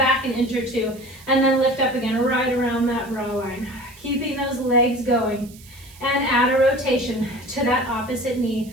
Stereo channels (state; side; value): noise; right; hiss, 22 dB below the sound